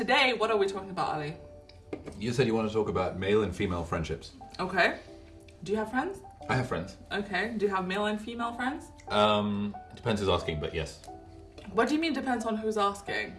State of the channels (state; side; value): identical; both; correlation 1.00